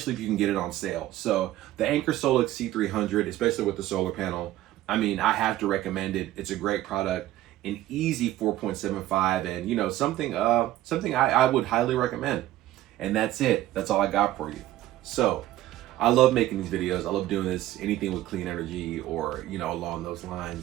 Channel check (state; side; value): quieter; left; 14.7 dB